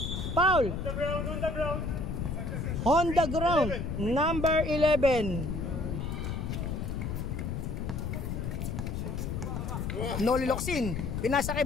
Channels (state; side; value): noise; left; rumble, 3 dB below the sound